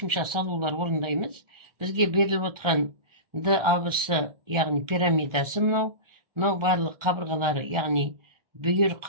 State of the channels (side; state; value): left; late; 1.3 ms